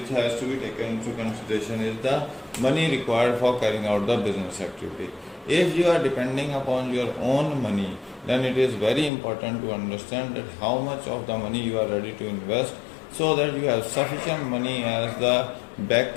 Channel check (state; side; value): drops out; right; at 9.1 s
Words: has to be taken into consideration is the money required for carrying out the business activity. If you are depending upon your own money, then it is very important to understand that how much of the money you are ready to invest, so that you have sufficient money as the